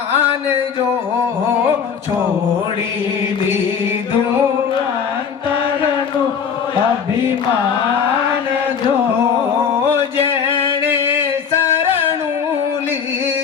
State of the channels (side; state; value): right; quieter; 6.9 dB